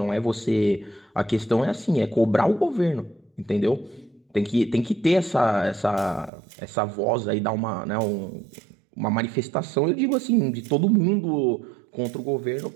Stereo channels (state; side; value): drops out; left; at 6.3 s